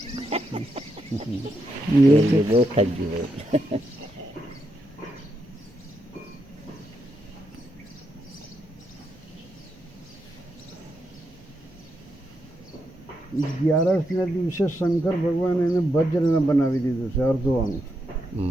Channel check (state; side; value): normal; both; correlation 0.82